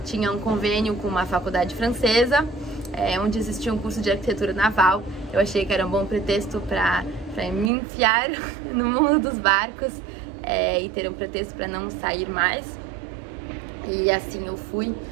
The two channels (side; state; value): left; drops out; at 7.7 s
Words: tinha um convênio com uma faculdade francesa, onde existia um curso de arquitetura naval. Eu achei que era um bom pretexto para me enfiar no mundo dos barcos e ter um pretexto para não sair mais. E assim eu fui,